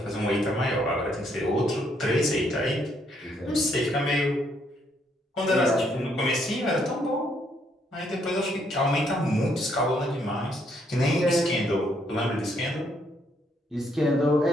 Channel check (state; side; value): normal; both; correlation 0.71